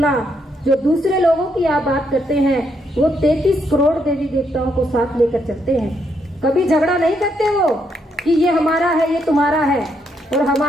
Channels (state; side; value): normal; both; correlation 0.76